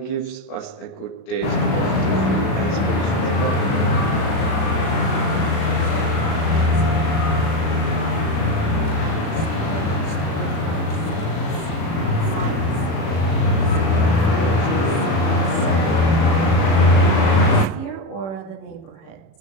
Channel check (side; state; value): right; late; 36 ms